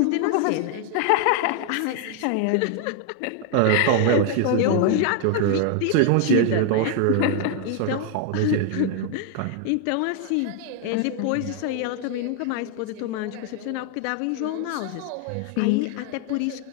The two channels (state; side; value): different; both; correlation 0.00